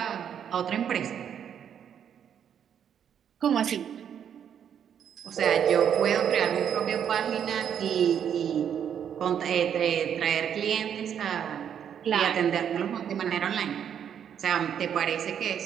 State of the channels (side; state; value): left; quieter; 8.7 dB